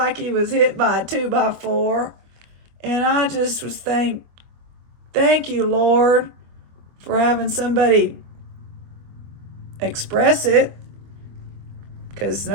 he was hit by a 2x4. And I just was thank you, Lord, for having somebody express it. Because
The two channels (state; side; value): late; left; 24 ms